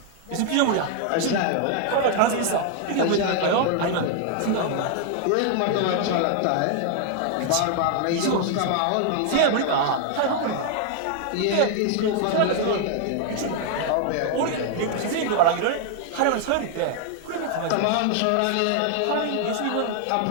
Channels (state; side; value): different; both; correlation 0.00